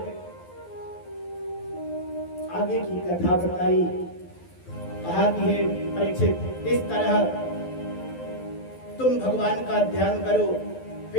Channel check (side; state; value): right; late; 12 ms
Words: आगे की कथा बताई, कहा कि हे परीक्षित, इस तरह तुम भगवान का ध्यान करो।